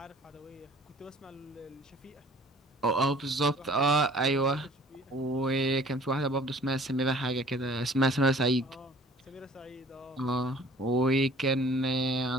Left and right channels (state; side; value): normal; both; correlation 0.52